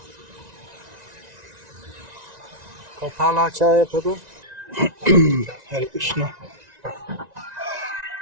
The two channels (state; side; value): late; left; 1.9 ms